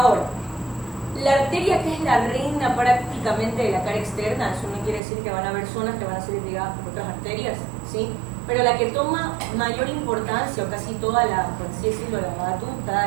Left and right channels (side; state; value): left; drops out; at 5.0 s